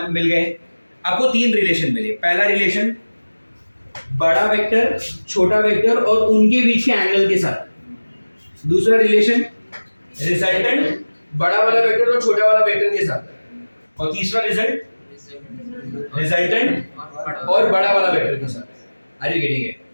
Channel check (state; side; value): inverted; both; correlation -1.00